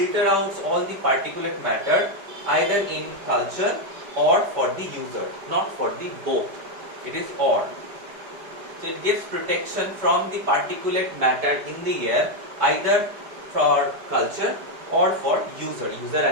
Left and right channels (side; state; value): left; late; 5.0 ms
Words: out all the particulate matter either in culture or for the user, not for the both. It is or. So it gives protection from the particulate matter in the air, either for culture or for user